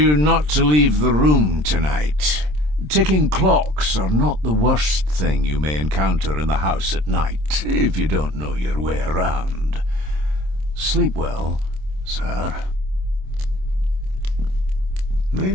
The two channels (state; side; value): late; left; 27 ms